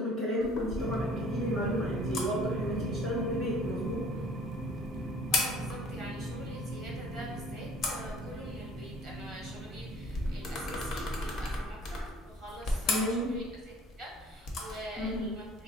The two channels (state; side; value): normal; both; correlation 0.52